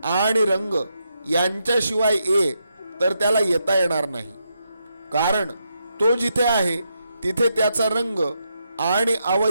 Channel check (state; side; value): inverted; both; correlation -0.82